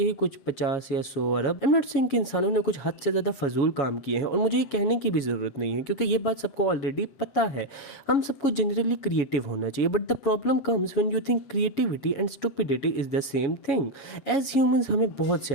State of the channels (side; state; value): right; late; 7.2 ms